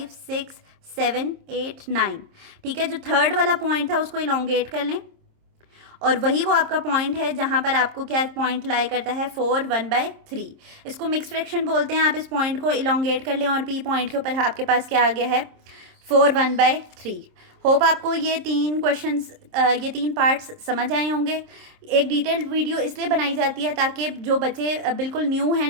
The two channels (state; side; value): late; left; 26 ms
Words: 6 7 8 9, ठीक है। जो थर्ड वाला पॉइंट था उसको इलोंगेट कर लें और वही वो आपका पॉइंट है जहाँ पर आपको क्या पॉइंट लाई करता है, 4 1/3। इसको मिक्स फ्रैक्शन बोलते हैं। आप इस पॉइंट को इलोंगेट कर लें और P पॉइंट के ऊपर आपके पास क्या आ गया है, 4 1/3। होप आपको ये 3 क्वेश्चंस ये 3 पार्ट्स समझ आए होंगे। एक डिटेल्ड वीडियो इसलिए बनाई जाती है ताकि जो बच्चे बिल्कुल न्यू हैं